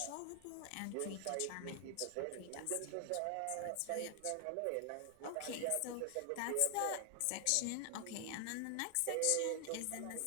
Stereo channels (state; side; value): different; both; correlation 0.00